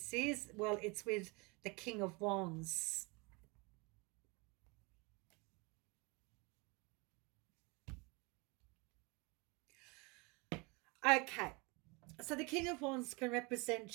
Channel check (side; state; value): left; quieter; 28.3 dB